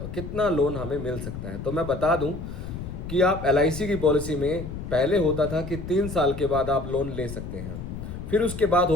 कितना लोन हमें मिल सकता है। तो मैं बता दूं कि आप LIC की पॉलिसी में पहले होता था कि 3 साल के बाद आप लोन ले सकते हैं, फिर उसके बाद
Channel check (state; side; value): noise; left; rumble, 8 dB below the sound